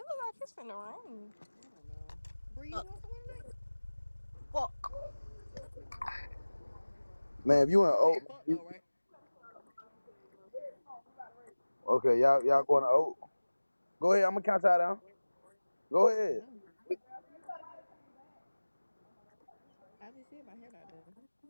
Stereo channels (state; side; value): inverted; both; correlation -1.00